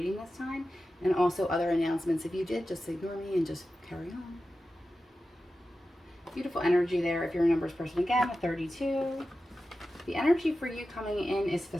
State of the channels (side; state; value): both; normal; correlation 0.93